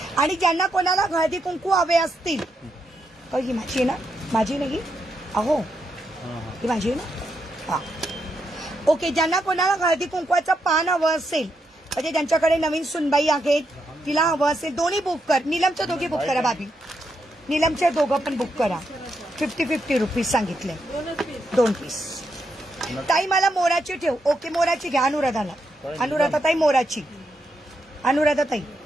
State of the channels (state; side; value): normal; both; correlation 0.82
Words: आणि ज्यांना कोणाला हळदी कुंकू हवे असतील, ही माझी आहे ना, माझी नाही अहो, ही माझी आहे ना. हा ओके, ज्यांना कोणाला हळदी कुंकवाचं पान हवं असेल, म्हणजे ज्यांच्याकडे नवीन सुनबाई आहेत, तिला हवं असेल, दोन्ही बुक कर. नीलमच्या दोघी बुक करा भाभी, नीलमच्या दोघं पण बुक करा. 50 रुपीज सांगितले, 2 पीस. ताई मला मोराची ठेव. ओके मोराची घ्या. अनुराधा ताई मोराची. अनुराधा ताई